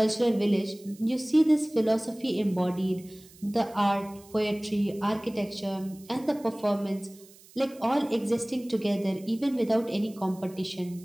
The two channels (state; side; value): noise; right; hiss, 24 dB below the sound